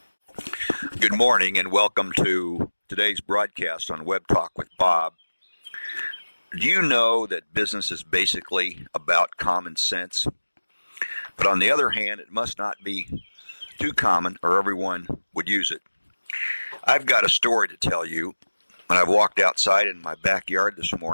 Good morning and welcome to today's broadcast on Web Talk with Bob. Do you know that business is basically about common sense? But on the other hand, it must not be too common or everyone would use it. I've got a story to tell you, and I've walked outside in my backyard this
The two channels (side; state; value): both; inverted; correlation -1.00